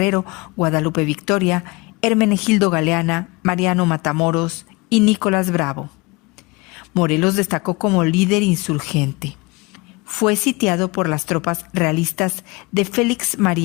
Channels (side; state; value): right; quieter; 25.3 dB